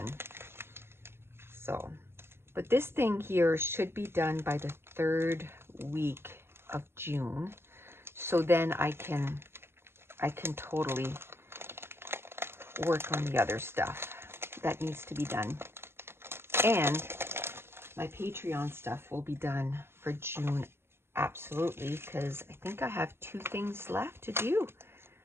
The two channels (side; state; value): left; late; 0.12 ms